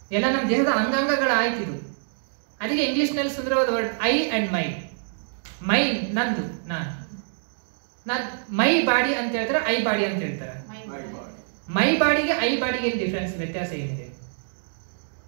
ಎಲ್ಲ ನಮ್ಮ ದೇಹದ ಅಂಗಾಂಗಗಳ ಆಯ್ತಿದು. ಅದಕ್ಕೆ ಇಂಗ್ಲಿಷ್ನಲ್ಲಿ ಸುಂದರವಾದ ವರ್ಡ್ ಐ ಅಂಡ್ ಮೈ. ಮೈ ನಂದು, ನಾನು ಮೈ ಬಾಡಿ ಅಂತ ಹೇಳ್ತಾರೆ, ಐ ಬಾಡಿ ಅಂತ ಹೇಳ್ತಾರೆ. ಮೈ ಬಾಡಿಗೆ ಐ ಬಾಡಿಗೆ ಏನು ಡಿಫ್ರೆನ್ಸ್, ವ್ಯತ್ಯಾಸ ಏನಿದೆ?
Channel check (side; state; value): left; silent; digital silence